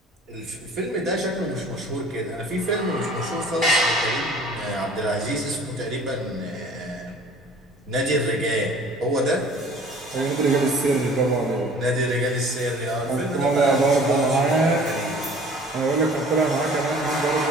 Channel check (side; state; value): both; normal; correlation 0.49